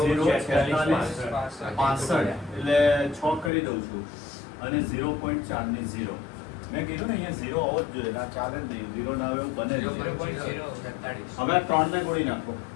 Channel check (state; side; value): drops out; right; at 3.5 s